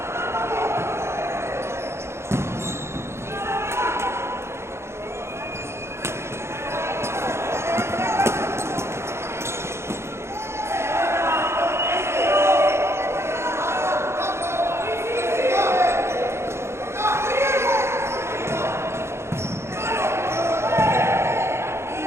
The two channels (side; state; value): left; late; 0.13 ms